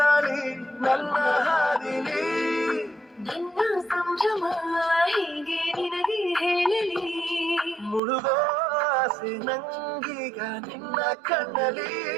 ನನ್ನ ಹಾದಿಲಿ, ನಿನ್ನ ಸಂಭ್ರಮ ಹೀಗೆ ನಿನಗೆ ಹೇಳಲಿ, ಮುಳುಗೋ ಆಸೆ ನಂಗೀಗ ನಿನ್ನ ಕಣ್ಣಲಿ,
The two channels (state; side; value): drops out; left; at 8.0 s